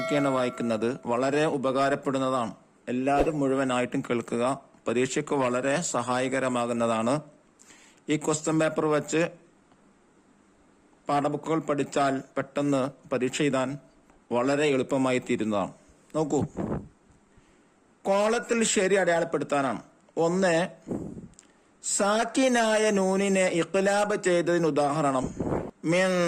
കീയാണ് വായിക്കുന്നത്. വളരെ ഉപകാരപ്പെടുന്നതാണ്. എല്ലാവരും മുഴുവനായിട്ടും കേൾക്കുക. പരീക്ഷയ്ക്ക് വളരെ സഹായകരമാകുന്നതാണ്. ഈ ക്വസ്റ്റ്യൻ പേപ്പർ വെച്ച് പാഠബുക്കുകൾ പഠിച്ചാൽ പെട്ടെന്ന് പരീക്ഷ എഴുതാൻ വളരെ എളുപ്പമായി തീരുന്നതാണ്. നോക്കൂ, കോളത്തിൽ ശരി അടയാളപ്പെടുത്താനാണ്. ഒന്ന്, സാക്കിനായ നൂനിനെ ഇഖ്ലാബ് ചെയ്തതിന് ഉദാഹരണം മിൻ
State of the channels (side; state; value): both; identical; correlation 1.00